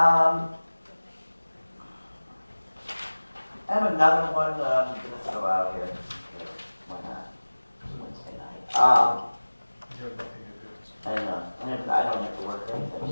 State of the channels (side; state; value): both; inverted; correlation -1.00